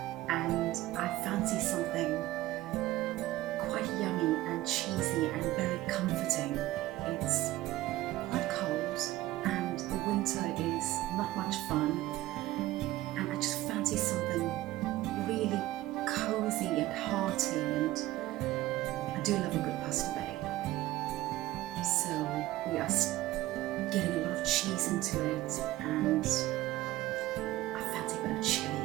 and I fancy something quite yummy and cheesy and very comforting. It's quite cold and the winter is not much fun, and I just fancy something really cozy and hearty, and I do love a good pasta bake. So we are getting a lot of cheese into it, and I fancy a bit of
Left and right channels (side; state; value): left; quieter; 16.5 dB